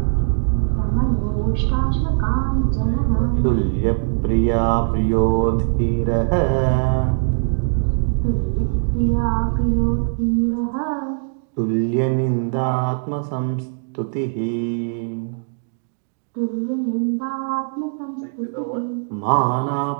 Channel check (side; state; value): left; silent; digital silence